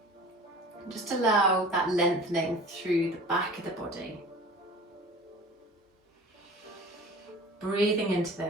Just allow that lengthening through the back of the body. Breathing into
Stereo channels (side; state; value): both; normal; correlation 0.41